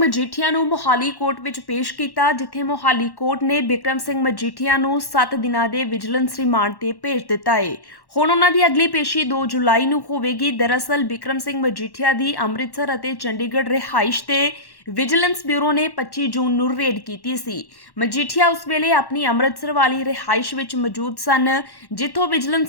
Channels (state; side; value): late; right; 1.1 ms